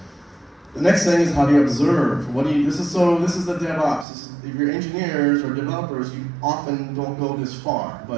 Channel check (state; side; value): drops out; left; at 4.0 s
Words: The next thing is how do you observe? This is the DevOps. If you're engineers or developers, you often don't go this far,